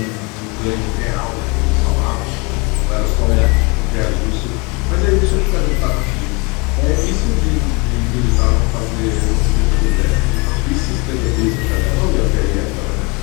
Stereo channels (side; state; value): right; quieter; 28.9 dB